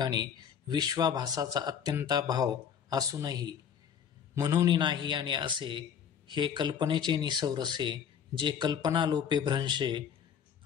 विश्वाभासाचा अत्यंताभाव असूनही म्हणून नाही आणि असे हे कल्पनेचे निसौरसे जे कल्पनालोपे भ्रंशे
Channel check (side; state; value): right; quieter; 8.0 dB